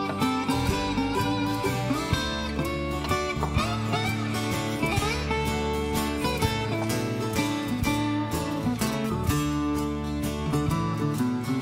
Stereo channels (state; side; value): identical; both; correlation 1.00